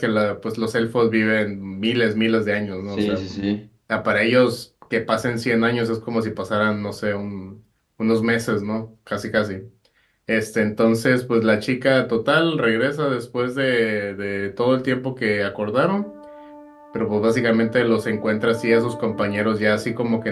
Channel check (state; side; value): identical; both; correlation 1.00